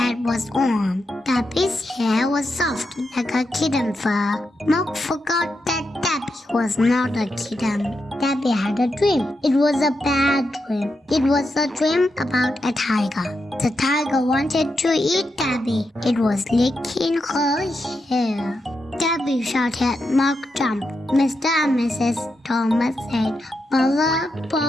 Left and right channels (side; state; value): both; normal; correlation 0.85